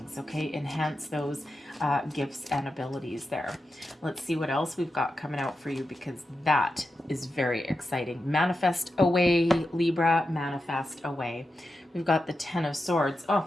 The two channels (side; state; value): both; normal; correlation 0.89